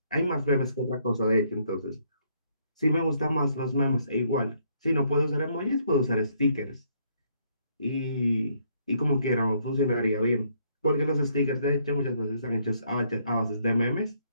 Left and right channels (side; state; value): both; inverted; correlation -0.70